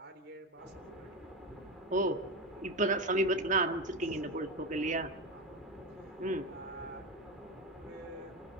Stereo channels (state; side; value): normal; both; correlation 0.18